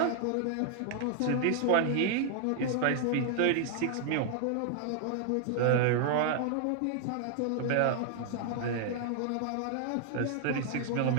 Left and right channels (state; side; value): different; both; correlation 0.00